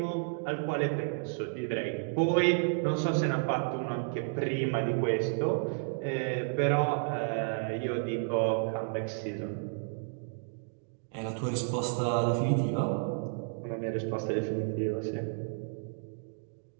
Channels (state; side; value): silent; left; digital silence